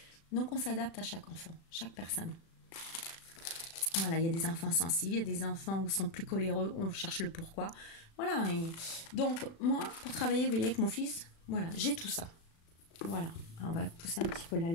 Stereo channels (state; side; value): late; right; 36 ms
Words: Donc, on s'adapte à chaque enfant, chaque personne. Voilà, il y a des enfants sensibles, il y a des enfants où sont plus coléreux, on cherche le pourquoi. Voilà. Et donc, moi, pour travailler, vous voyez, avec mon fils, voilà, j'ai tout ça. Voilà. Alors, on va pousser un petit peu